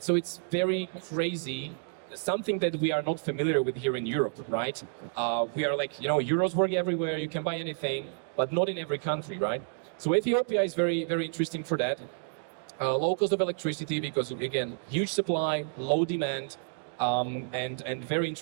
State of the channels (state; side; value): silent; left; digital silence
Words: So it's very crazy, something that we are not familiar with here in Europe, right? We are like, euros work everywhere, you can buy anything, but not in every country, right? So Ethiopia is very, very interesting for that. Low cost of electricity because, again, huge supply, low demand, and very